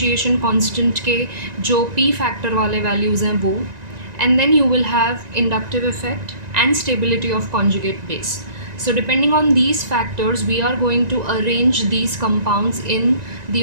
constant के जो p फैक्टर वाले वैल्यूज़ हैं वो, and then you will have inductive effect and stability of conjugate base. So depending on these factors we are going to arrange these compounds in the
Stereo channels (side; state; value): left; late; 1.9 ms